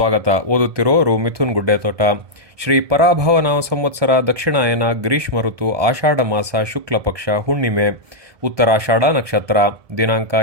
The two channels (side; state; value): left; late; 1.7 ms